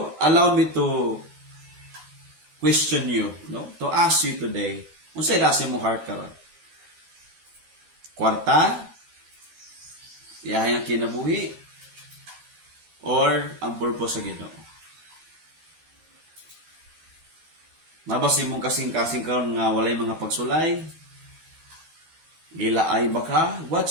allow me to question you, to ask you today, unsa ra si mong heart karon? Kwarta? Iyahay ang kinabuhi? Or ang purpose sa Ginoo? Nabas imong kasing-kasing karon nga walay mga pagsulay? Gilaay ba ka?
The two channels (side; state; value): left; late; 13 ms